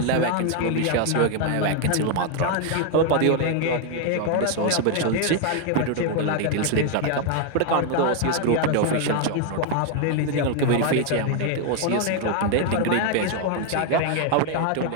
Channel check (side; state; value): both; different; correlation 0.00